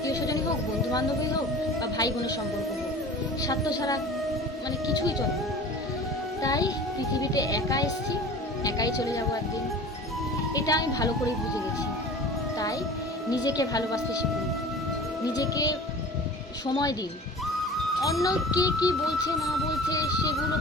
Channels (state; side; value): normal; both; correlation 0.40